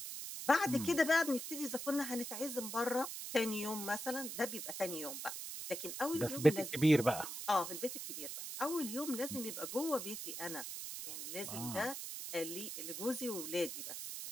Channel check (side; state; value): right; noise; hiss, 6 dB below the sound